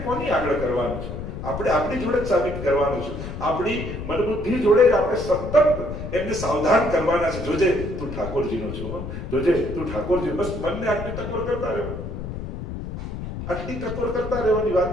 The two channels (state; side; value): noise; left; rumble, 7 dB below the sound